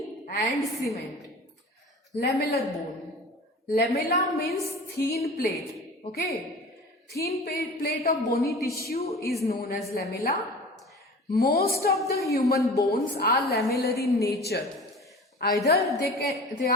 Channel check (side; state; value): both; normal; correlation 0.39